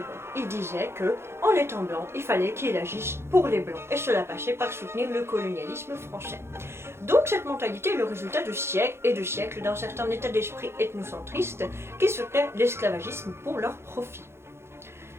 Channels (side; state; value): left; late; 0.12 ms